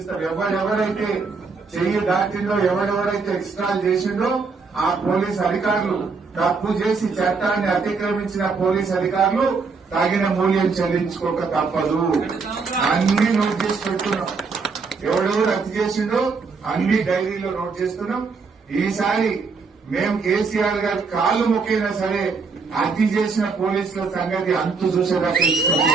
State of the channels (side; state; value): left; quieter; 4.7 dB